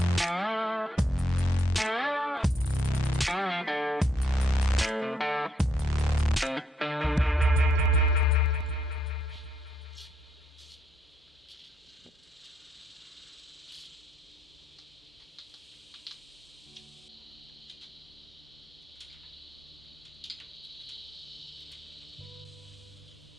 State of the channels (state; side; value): normal; both; correlation 0.73